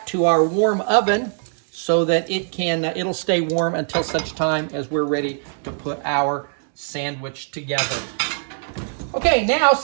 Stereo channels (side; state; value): left; silent; digital silence